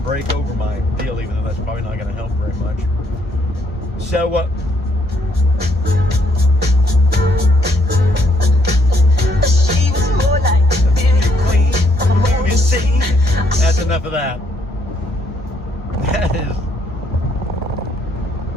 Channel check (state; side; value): normal; both; correlation 0.71